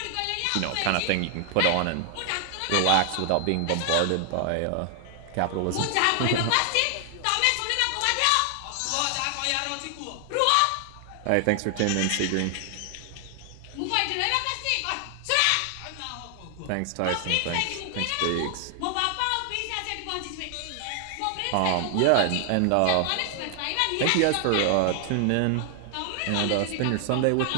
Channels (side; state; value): both; different; correlation 0.00